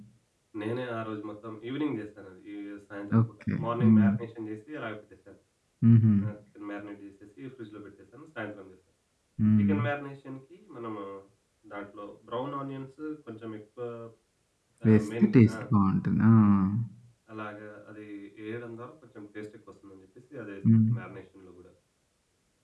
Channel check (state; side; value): identical; both; correlation 1.00